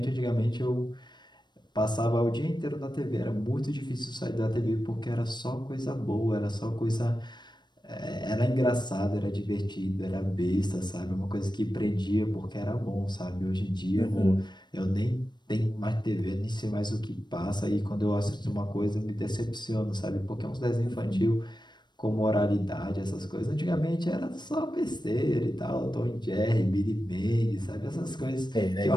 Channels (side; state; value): right; late; 0.21 ms